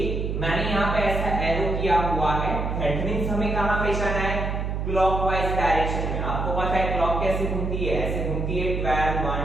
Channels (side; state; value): right; noise; hum, 2 dB below the sound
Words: मैंने यहाँ पे ऐसा एरो किया हुआ है. दैट मींस हमें कहां पे जाना है, क्लॉकवाइज डायरेक्शन में. आपको पता है क्लॉक कैसे घूमती है, ऐसे घूमती है. 12